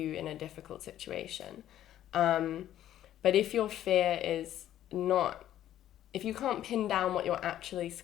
in a difficult situation. But if your fear is not, if you can't pin down what you're actually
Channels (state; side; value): quieter; right; 12.1 dB